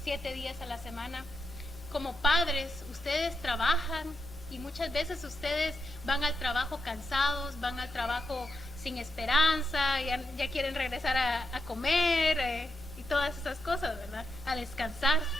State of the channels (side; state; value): both; normal; correlation 0.84